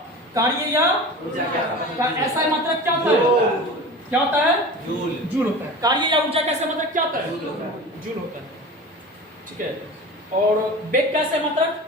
कार्य या ऊर्जा का ऐसा मात्रक क्या होता है? क्या होता है? जूल। जूल होता है। कार्य या ऊर्जा कैसे मात्रक क्या होता है? जूल होता है। ठीक है। और वेग कैसे मात्रक?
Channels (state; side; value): normal; both; correlation 0.34